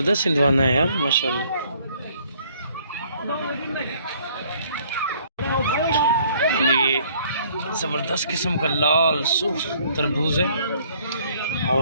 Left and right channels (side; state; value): both; inverted; correlation -0.61